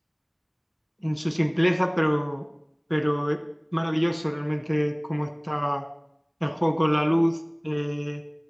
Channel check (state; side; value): identical; both; correlation 1.00